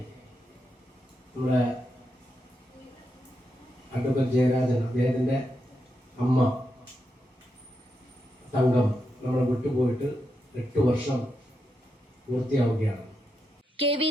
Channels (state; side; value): normal; both; correlation 0.84